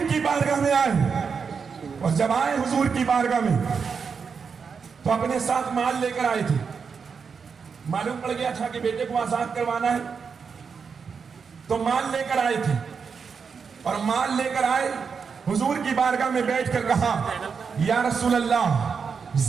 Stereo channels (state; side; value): quieter; left; 5.9 dB